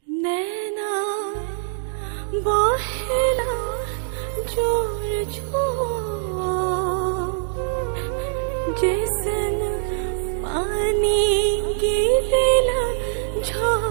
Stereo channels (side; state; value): left; silent; digital silence